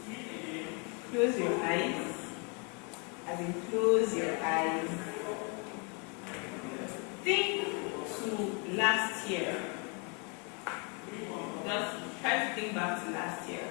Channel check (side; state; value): right; quieter; 34.3 dB